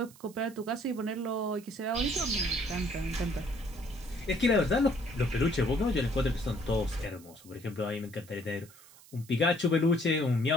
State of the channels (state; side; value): noise; right; hiss, 23 dB below the sound